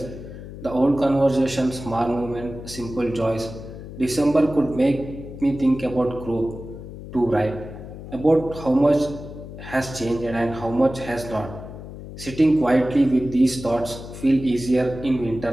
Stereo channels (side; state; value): left; noise; hum, 12 dB below the sound